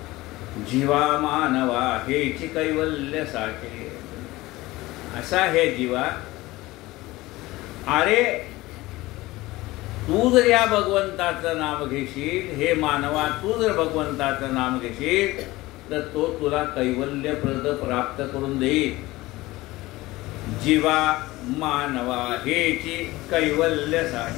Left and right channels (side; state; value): right; quieter; 19.2 dB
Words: जीवा मानवा हेची कैवल्य साचे, असा हे जीवा, अरे तू जर या भगवंताचं नाम घेशील, हे मानवा तू जर भगवंताचं नाम घेशील तर तो तुला कैवल्यप्रद प्राप्त करून देईल. जीवा मानवा हेची कैवल्य